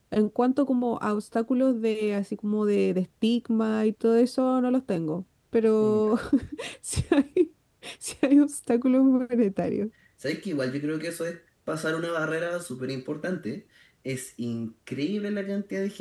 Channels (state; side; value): identical; both; correlation 1.00